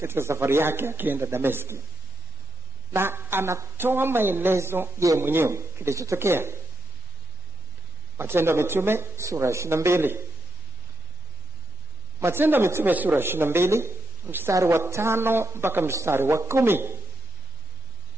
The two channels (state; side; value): normal; both; correlation 0.84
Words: safari yake akienda Dameski, na anatoa maelezo yeye mwenyewe kilichotokea. Matendo ya Mitume sura 22. Matendo ya Mitume sura 22 mstari wa 5 mpaka mstari wa 10.